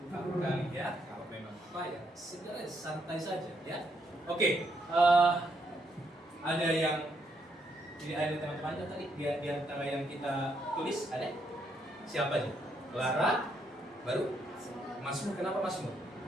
kamu kali ya. Kalau memang apa ya, sebenarnya santai saja ya. Oke. Ada yang jadi ada teman-temannya tadi di antara yang kita tulis ada siapa aja? Clara, baru Masmur. Kenapa Masmur?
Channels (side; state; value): both; normal; correlation 0.75